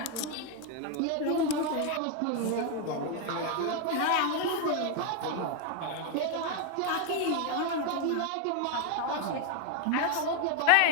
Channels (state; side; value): different; both; correlation 0.01